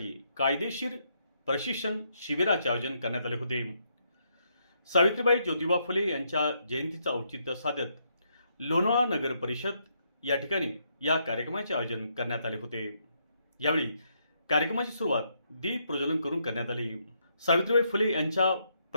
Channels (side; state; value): both; inverted; correlation -0.76